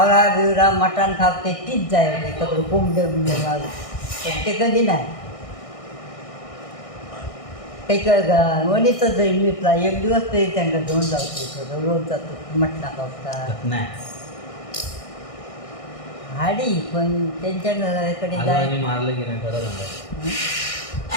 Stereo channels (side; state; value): right; late; 1.6 ms